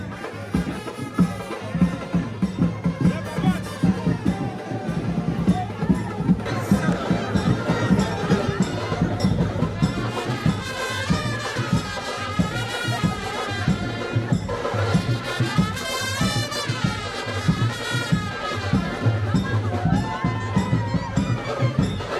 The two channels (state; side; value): identical; both; correlation 1.00